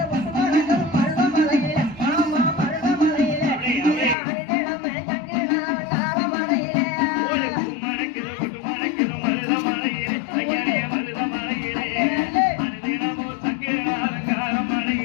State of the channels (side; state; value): right; drops out; at 4.2 s